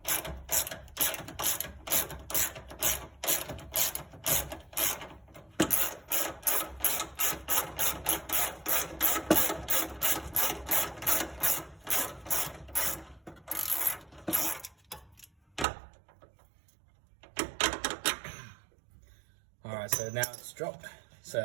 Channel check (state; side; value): drops out; left; at 15.7 s